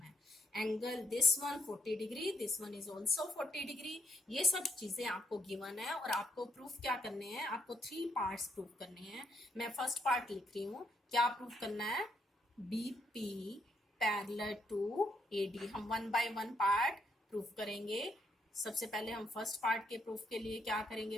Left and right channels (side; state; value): both; normal; correlation 0.75